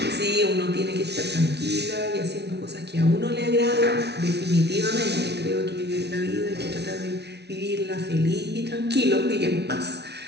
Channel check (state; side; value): late; left; 0.49 ms